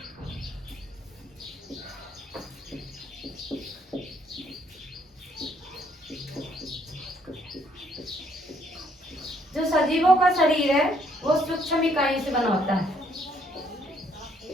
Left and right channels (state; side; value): normal; both; correlation 0.67